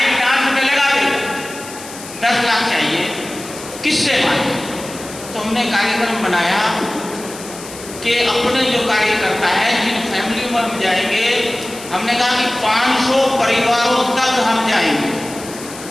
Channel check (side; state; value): left; noise; hiss, 14 dB below the sound